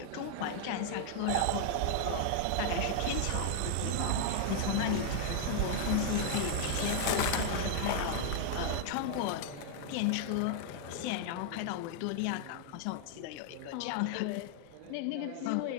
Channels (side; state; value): both; different; correlation 0.00